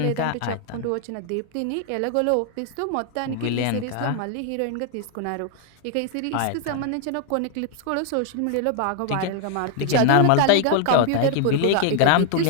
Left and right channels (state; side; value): different; both; correlation 0.00